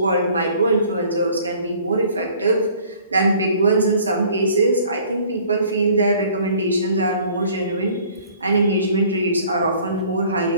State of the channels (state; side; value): inverted; both; correlation -0.54